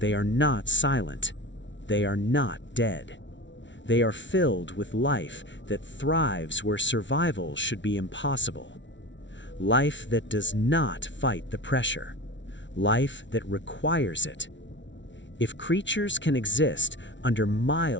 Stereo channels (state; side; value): late; right; 0.54 ms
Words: are not silent. They are not dead. They are filled with life that thrives where survival should be impossible. Life that does not fight the pressure. Life that requires it. If creatures can exist under